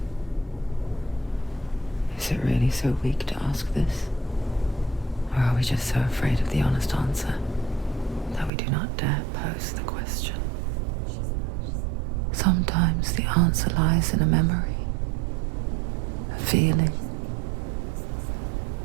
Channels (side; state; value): left; drops out; at 8.5 s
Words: Is it really so weak to ask this? Or are we just so afraid of the honest answer? we do not dare pose the question. Sometimes the answer lies in a memory, a feeling,